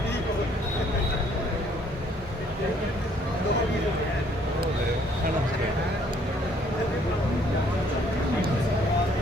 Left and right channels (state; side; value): normal; both; correlation 0.63